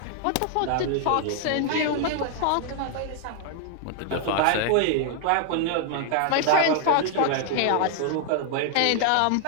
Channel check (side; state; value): both; different; correlation 0.00